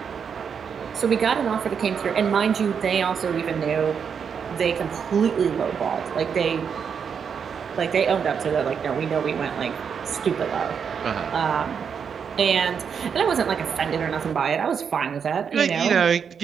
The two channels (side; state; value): left; quieter; 6.9 dB